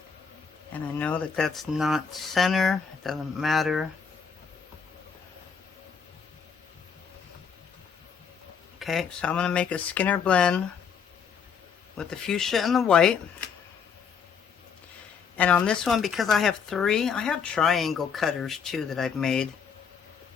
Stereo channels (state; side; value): quieter; right; 6.5 dB